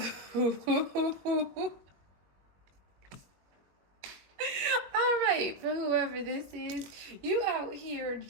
All right, for whoever this is, you out here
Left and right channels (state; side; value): late; left; 21 ms